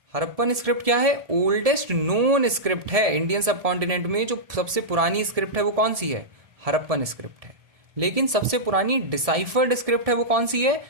Harappan script क्या है? ओल्डेस्ट नोन स्क्रिप्ट है इंडियन सबकॉन्टिनेंट में। जो सबसे पुरानी स्क्रिप्ट है वो कौन सी है? हरप्पन स्क्रिप्ट है। लेकिन सबसे पुरानी डिसाइफर्ड स्क्रिप्ट है वो कौन सी है?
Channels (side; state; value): left; late; 1.7 ms